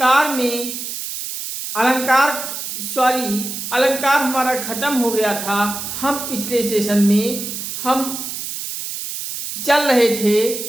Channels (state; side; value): noise; right; hiss, 6 dB below the sound